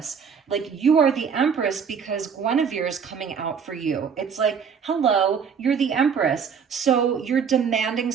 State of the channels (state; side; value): quieter; left; 6.7 dB